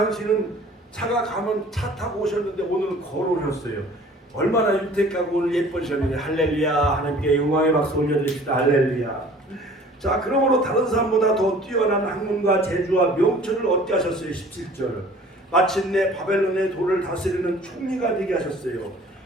차가 가면 차 타고 오셨는데 오늘은 걸어오셨어요. 얼마나 윤택하고 오늘 예쁘셨는데 할렐루야. 하나님께 영광의 박수 올려드립시다. 할렐루야. 자, 그러므로 다른 사람보다 더 뛰어난 학문과 재주와 명철을 얻게 하셨어요. 17절 마침내 바벨론의 도를 다스리는 총리가 되게 하셨어요.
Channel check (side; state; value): both; normal; correlation 0.50